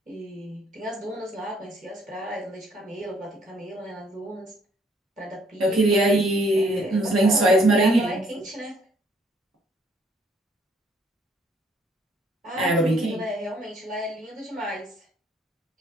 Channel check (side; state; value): both; normal; correlation 0.65